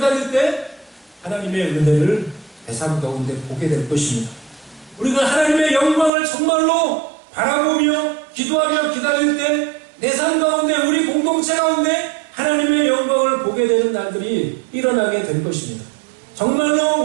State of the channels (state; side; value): drops out; left; at 6.1 s